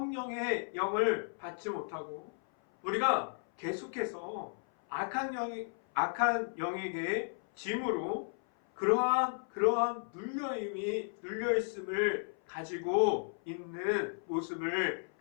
영을 받지 못하고 우리가 계속해서 악한 영에게 짐으로 그러한 눌려있음을 가지고 있는 모습을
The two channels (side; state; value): right; silent; 55 dB below the other